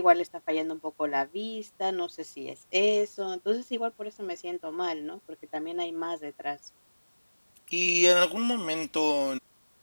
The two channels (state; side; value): inverted; both; correlation -1.00